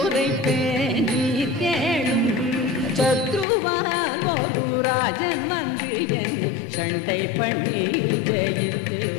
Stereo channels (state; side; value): drops out; right; at 3.5 s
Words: நீர் கேளும். சத்ருவால் ஒரு ராஜன் வந்து என்னை சண்டை பண்ணி ஜெயித்து